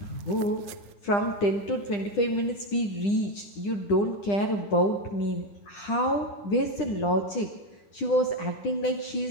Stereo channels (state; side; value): late; right; 10 ms